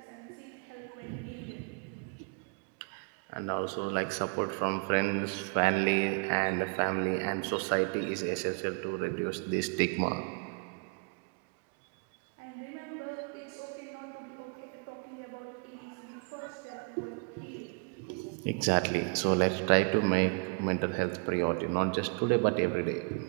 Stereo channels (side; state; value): left; quieter; 36.6 dB